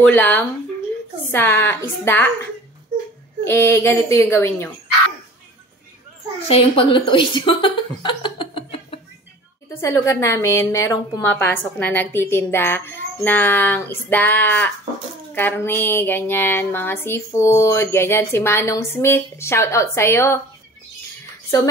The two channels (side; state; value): both; normal; correlation 0.44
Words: ulam sa isda, ganito yung gawin nyo. Siya yung paglutuin nyo. Dito sa lugar namin, merong pumapasok na nagtitinda ng isda, karne, ganyan, mga seafood, ganyan. Si Manong Smith, shout out sa'yo. So,